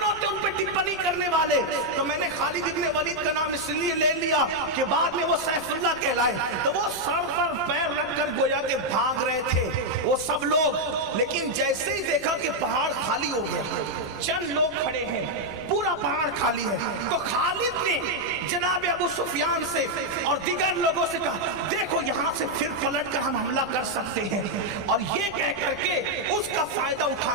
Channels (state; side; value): noise; right; rumble, 21 dB below the sound